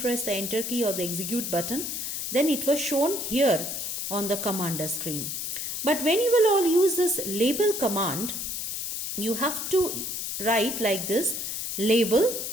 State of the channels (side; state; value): left; noise; hiss, 4 dB below the sound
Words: the enter key or the execute button, then it was shown here on the commander screen. But when you will all use this label command, you have to write like this, label.